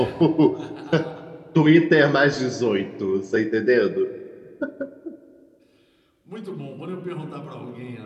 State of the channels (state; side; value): identical; both; correlation 1.00